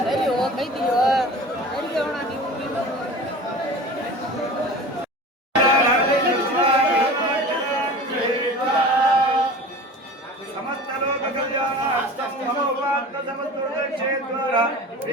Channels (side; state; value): both; normal; correlation 0.37